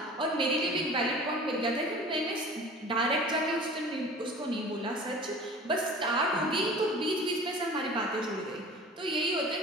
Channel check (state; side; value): normal; both; correlation 0.41